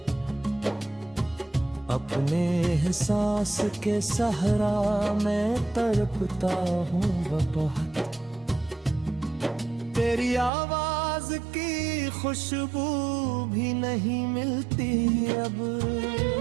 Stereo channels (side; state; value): left; drops out; at 10.5 s